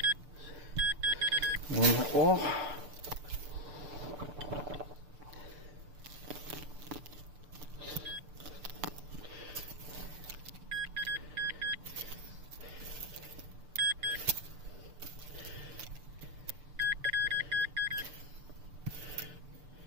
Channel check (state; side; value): late; left; 6.7 ms